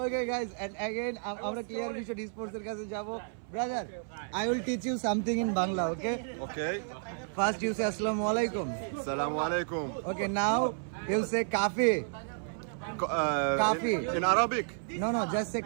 guys, and again, আমরা clear vision স্পোর্টসের কাছে যাব brother I will teach you something in Bangla, okay? Okay. First you say Assalamu alaikum. Assalamu alaikum. Okay, now you say kafi. Coffee. In Arabic. No, just say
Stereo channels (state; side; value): silent; left; 57 dB below the other